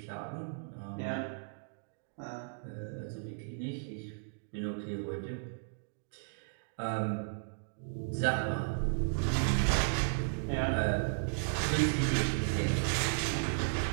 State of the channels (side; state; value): left; silent; digital silence